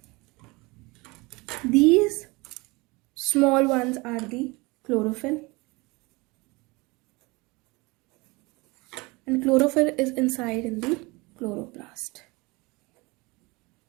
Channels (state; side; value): quieter; left; 24.7 dB